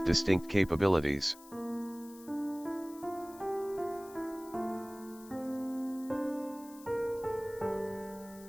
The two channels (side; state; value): left; noise; hiss, 20 dB below the sound